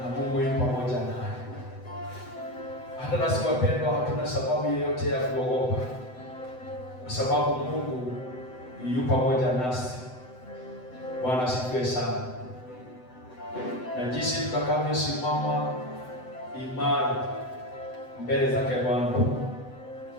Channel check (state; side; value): late; right; 7.9 ms